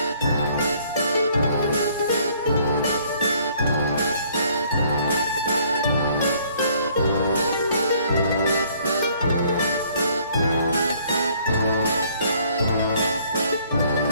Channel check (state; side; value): inverted; both; correlation -0.61